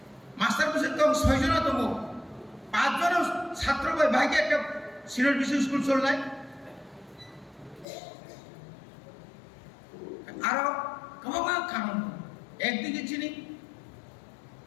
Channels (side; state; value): right; drops out; at 7.9 s